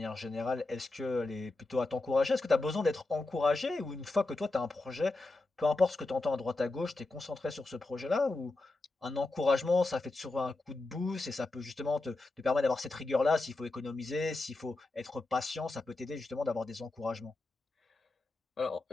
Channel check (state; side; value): quieter; right; 3.1 dB